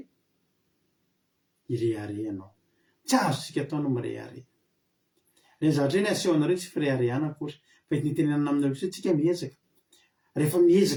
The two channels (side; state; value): both; identical; correlation 1.00